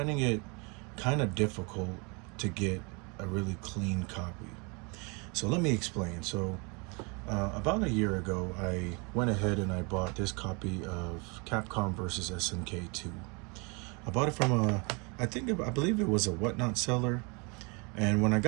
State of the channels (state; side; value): quieter; left; 31.1 dB